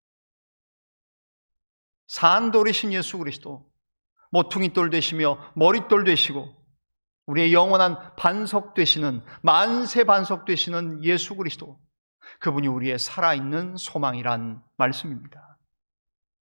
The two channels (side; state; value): both; inverted; correlation -1.00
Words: 산 돌이신 예수 그리스도, 모퉁이돌 되시며 머릿돌 되시고 우리의 영원한 반석 되시는, 만세 반석 되시는 예수 그리스도, 그분이 우리의 살아있는 소망이란 말씀입니다.